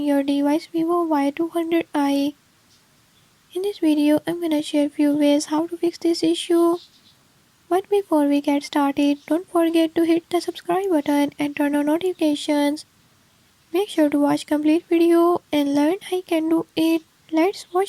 device Vivo Y200i. In this video, I'm gonna share few ways how to fix this issue. But before we get started, don't forget to hit the subscribe button and turn on notifications. Make sure to watch complete video and learn how you can do it. Let's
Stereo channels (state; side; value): identical; both; correlation 1.00